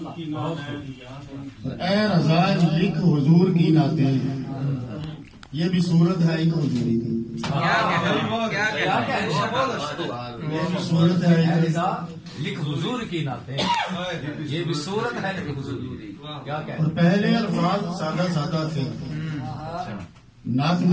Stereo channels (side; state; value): both; identical; correlation 1.00